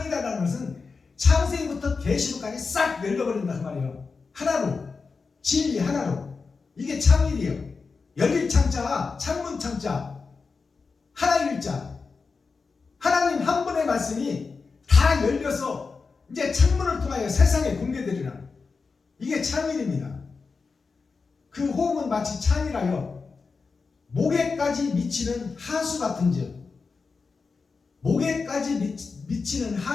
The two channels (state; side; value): quieter; right; 4.7 dB